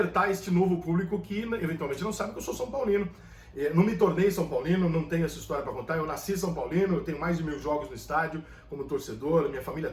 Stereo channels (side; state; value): both; identical; correlation 1.00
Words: este novo público que eventualmente não sabe que eu sou São Paulino. Não me tornei São Paulino, não tenho essa história para contar, eu nasci São Paulino, eu tenho mais de 1000 jogos no estádio como torcedor, minha família